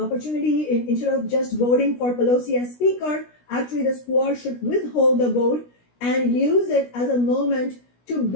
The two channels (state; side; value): late; right; 16 ms